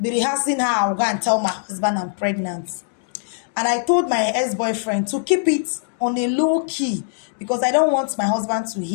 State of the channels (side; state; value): right; silent; digital silence